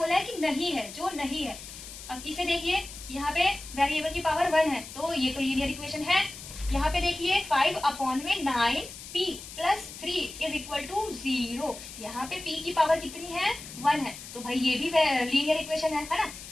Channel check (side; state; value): left; noise; hiss, 13 dB below the sound